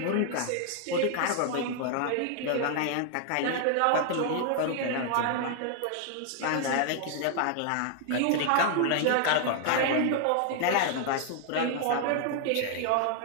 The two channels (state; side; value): different; both; correlation 0.00